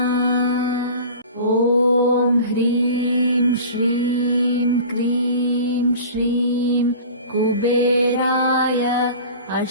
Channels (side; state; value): both; inverted; correlation -0.38